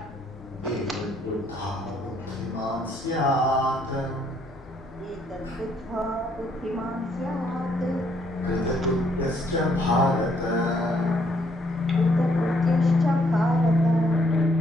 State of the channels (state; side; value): normal; both; correlation 0.69